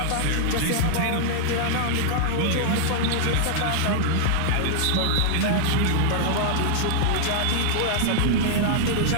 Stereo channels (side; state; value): both; different; correlation -0.01